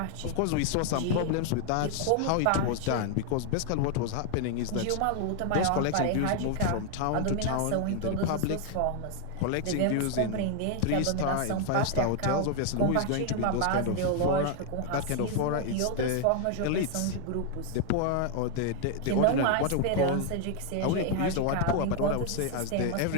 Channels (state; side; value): different; both; correlation 0.00